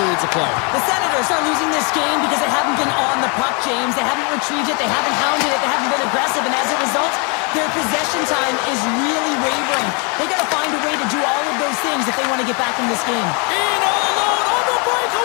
of play. The Senators are losing this game because they haven't been on the puck, James. They haven't retrieved it. They haven't hounded it. They haven't been aggressive. And as a result, their possession time is really wavering. They got to find a way to do all of those things if they want to get back in this game. In all alone on the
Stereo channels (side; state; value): right; quieter; 33.8 dB